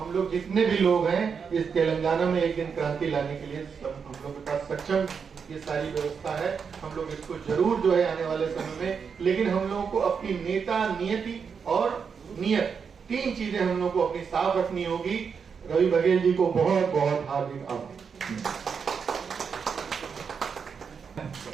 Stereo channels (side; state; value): left; quieter; 6.2 dB